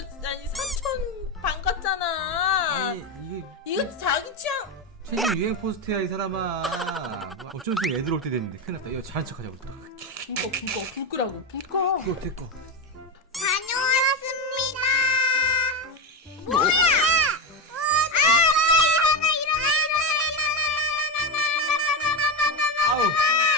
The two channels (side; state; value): both; normal; correlation 0.13